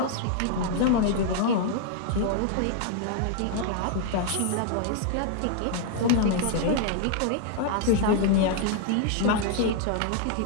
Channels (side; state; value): both; different; correlation 0.00